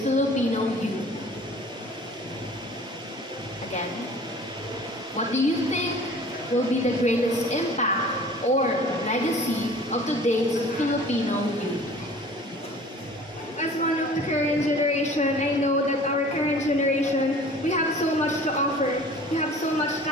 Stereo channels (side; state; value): both; normal; correlation 0.46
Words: Filipino youth? Again, what do you think will be the greatest impact or legacy of today's Filipino youth? As one of the current generation, I know that our current generation, we have so much to offer. We have so much